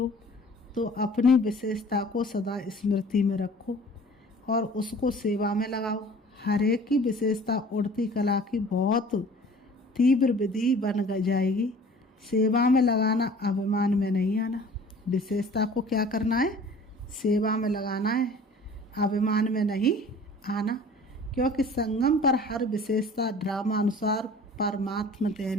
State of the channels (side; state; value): both; normal; correlation 0.47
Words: तो अपनी विशेषता को सदा स्मृति में रखो और उसको सेवा में लगाओ। हर एक की विशेषता उड़ती कला की बहुत तीव्र विधि बन जाएगी। सेवा में लगाना, अभिमान में नहीं आना। विशेषता को क्या करना है? सेवा में लगाना है, अभिमान में नहीं आना। क्योंकि संगम पर हर विशेषता ड्रामा अनुसार परमात्मा